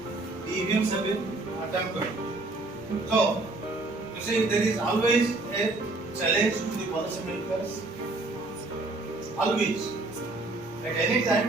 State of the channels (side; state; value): left; quieter; 3.1 dB